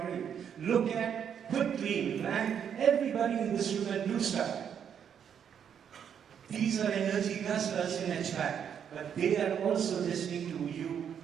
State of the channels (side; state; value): left; quieter; 8.2 dB